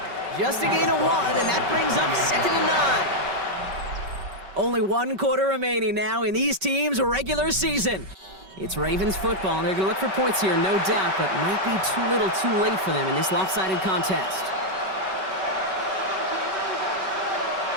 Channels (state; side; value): late; left; 5.3 ms